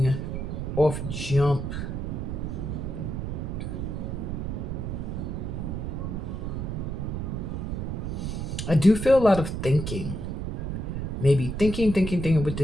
off jump, I do feel a lot of thinking. Maybe thinking with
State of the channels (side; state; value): right; noise; rumble, 3 dB below the sound